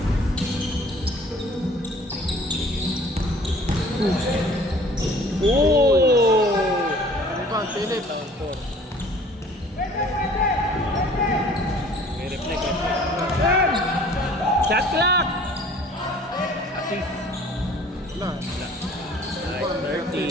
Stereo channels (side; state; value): both; normal; correlation 0.51